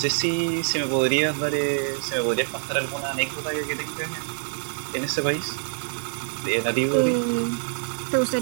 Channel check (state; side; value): silent; left; 57 dB below the other